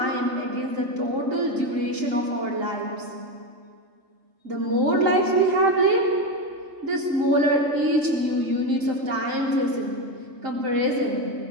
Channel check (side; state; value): left; late; 3.8 ms